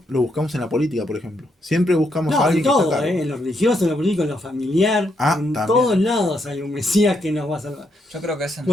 lo buscamos en la política, por ejemplo. Siempre buscamos a No, en alguien que está a todo, cargo. en lo religioso, en lo político, en lo familiar, en También. todos lados hay un Mesías que nos va a salvar. Yo creo que ese es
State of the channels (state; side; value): normal; both; correlation 0.78